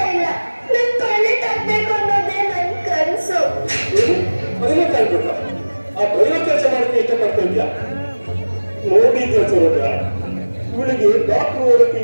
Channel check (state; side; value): inverted; both; correlation -1.00